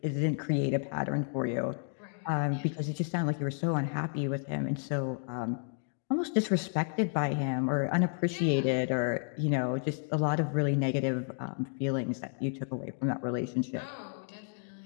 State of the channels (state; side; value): silent; right; 57 dB below the other